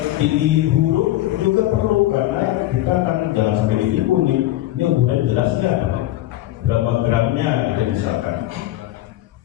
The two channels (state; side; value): quieter; right; 15.1 dB